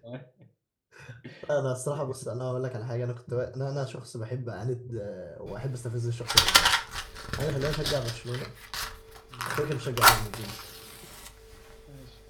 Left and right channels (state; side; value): identical; both; correlation 1.00